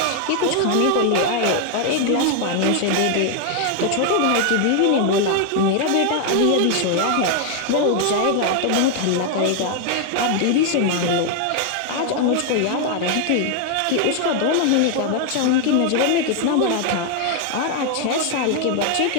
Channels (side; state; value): both; different; correlation 0.00